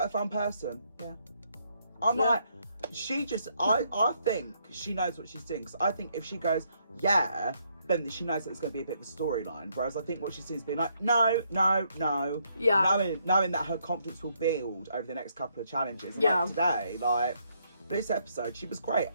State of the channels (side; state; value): both; inverted; correlation -0.73